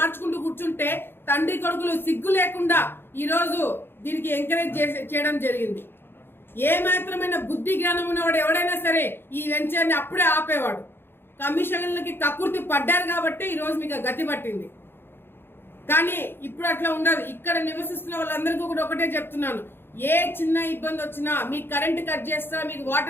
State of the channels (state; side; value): late; right; 0.11 ms